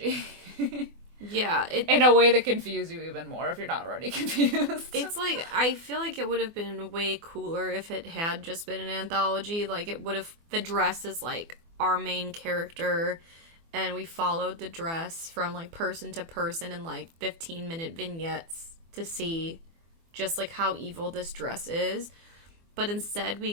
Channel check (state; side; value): late; left; 24 ms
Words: Yeah. In a way that confuses you even more if you're not already confused. It's like, I feel like it would have been way cooler if it had just been an anthology. Like, it would have, the dress is like our main character, and we followed the dress from like person to person in like 15-minute vignettes to see just like how evil this dress is. But instead we